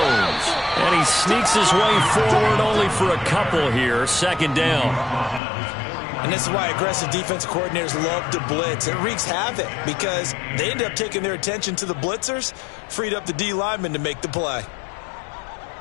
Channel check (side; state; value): right; drops out; at 5.4 s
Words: And he sneaks his way forward only for a couple here. Second down. And this is why aggressive defense coordinators love to blitz. It wreaks havoc because they end up taking their attention to the blitzers, freed up the D lineman to make the play.